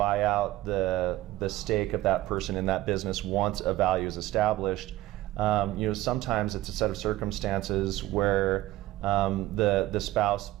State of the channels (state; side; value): quieter; left; 16.5 dB